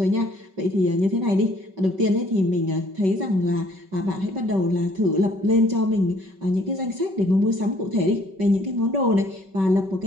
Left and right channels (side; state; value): left; late; 5.3 ms